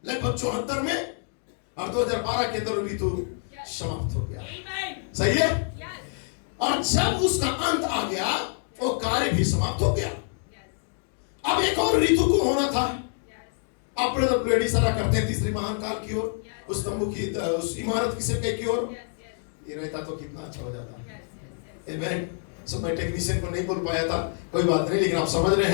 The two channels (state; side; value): silent; right; 59 dB below the other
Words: लगभग 74 में, और 2012 के अंदर ऋतु समाप्त हो गया। सही है? और जब उसका अंत आ गया, वो कार्य भी समाप्त हो गया। अब एक और ऋतु को होना था। अब ब्रदर ब्लेड इशारा करते हैं तीसरी महान काल की ओर, उस तंबू की, उस इमारत की सिरके की ओर। ये रहता तो कितना अच्छा हो जाता। आमेन। सो मैं टेक्नीशियन को नहीं बोल पाया था, कोई बात नहीं, लेकिन आप समझ रहे